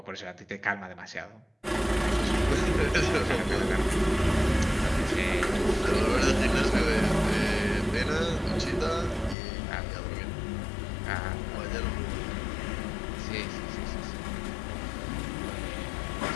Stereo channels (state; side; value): drops out; right; at 9.3 s